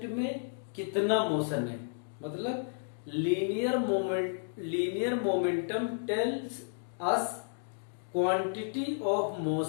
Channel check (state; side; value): silent; right; digital silence